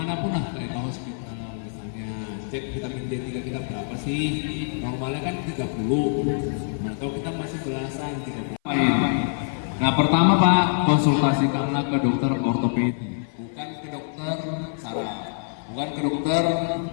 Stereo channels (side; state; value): right; silent; 57 dB below the other